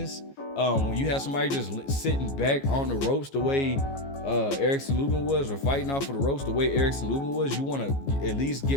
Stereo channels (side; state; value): right; late; 15 ms